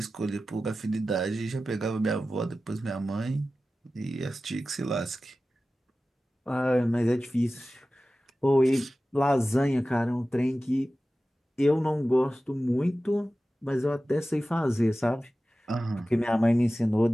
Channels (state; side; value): normal; both; correlation 0.95